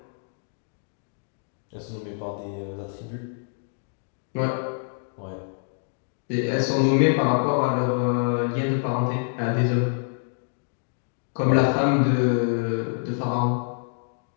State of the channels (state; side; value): silent; right; digital silence